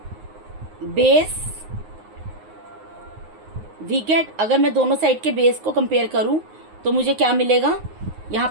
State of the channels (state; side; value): late; left; 9.5 ms